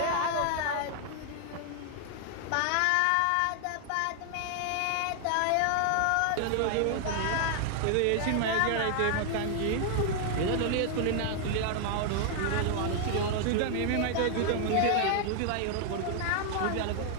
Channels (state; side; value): different; both; correlation 0.00